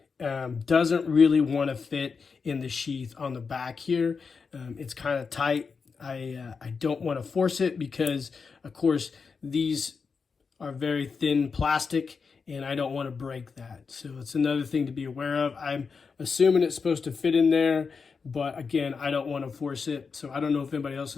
doesn't really want to fit in the sheath on the back here. It's kind of tight. I don't want to force it because, of course, these are very thin plastic, and I don't want to break that. So it's another thing to be aware of. I'm assuming it's supposed to fit in there, but again, I don't want to force it. So I don't know if anybody else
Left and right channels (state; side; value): quieter; right; 5.2 dB